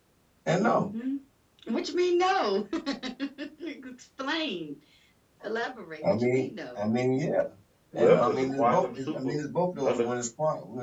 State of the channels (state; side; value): identical; both; correlation 1.00